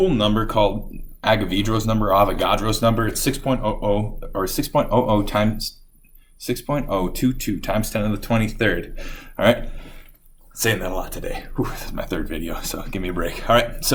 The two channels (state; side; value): identical; both; correlation 1.00